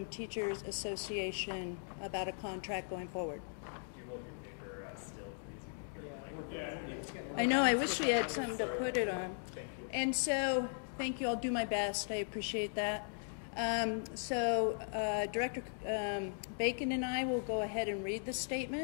Teachers Association about a contract going forward. Do you hold your paper still, please? I know, I wish we had something to put it on. Thank you. And so, thank you, I'll do my best, I appreciate that. Director Bacon and I will go ahead and read the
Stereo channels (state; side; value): silent; right; digital silence